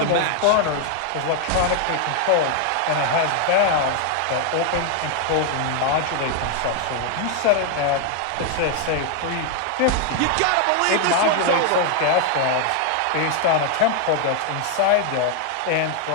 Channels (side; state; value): both; different; correlation 0.00